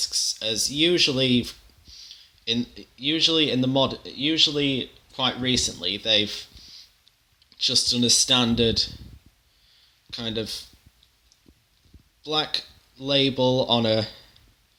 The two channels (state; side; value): identical; both; correlation 1.00